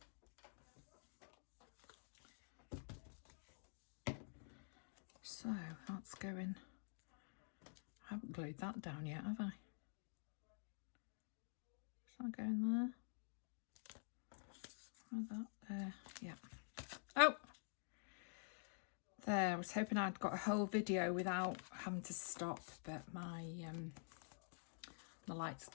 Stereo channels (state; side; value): silent; right; digital silence